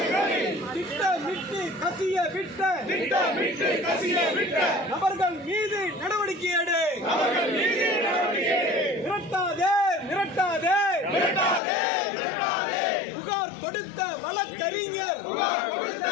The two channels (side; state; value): right; drops out; at 11.6 s